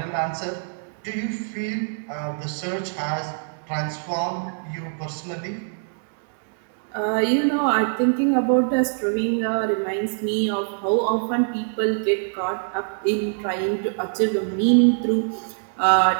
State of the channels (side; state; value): left; silent; digital silence